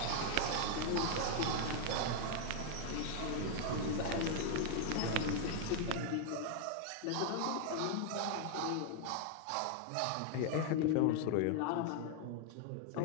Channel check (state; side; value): different; both; correlation 0.00